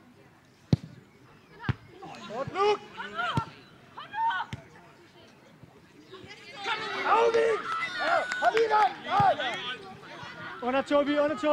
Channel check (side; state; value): both; identical; correlation 1.00